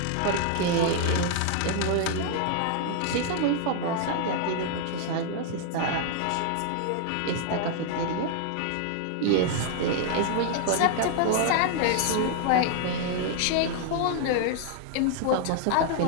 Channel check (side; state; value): both; different; correlation 0.00